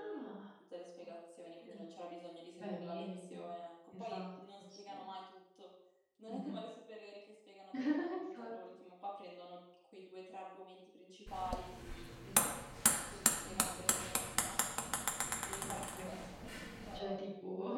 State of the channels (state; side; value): identical; both; correlation 1.00